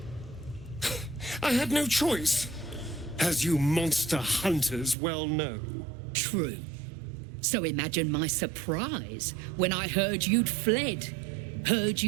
I had no choice, as you monster hunters well know. True. So imagine my surprise when I heard you'd fled. Heard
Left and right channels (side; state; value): left; drops out; at 5.0 s